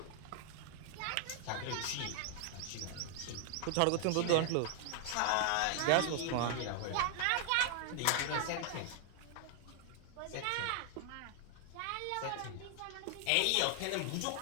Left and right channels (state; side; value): different; both; correlation 0.00